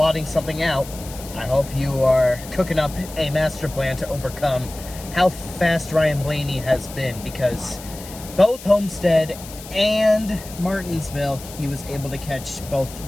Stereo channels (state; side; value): noise; left; hiss, 15 dB below the sound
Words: something out. I hope you are cooking up a master plan to overcome how fast Ryan Blaney has been, because both Homestead and Martinsville, he was able to catch